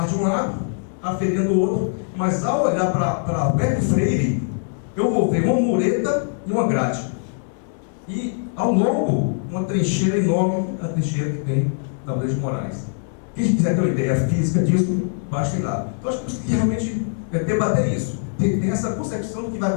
de um lado, a feirinha do outro, mas ao olhar para Alberto Freire, eu vou ver uma mureta e uma grade. E ao longo, uma trincheira enorme, a trincheira que tem da Blade de Moraes. Quem quiser ter uma ideia física disso, basta ir lá. Então acho que temos que realmente debater isso, tem essa concepção do que vai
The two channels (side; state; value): right; silent; digital silence